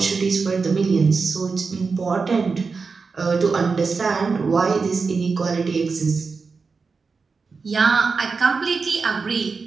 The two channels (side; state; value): left; quieter; 4.7 dB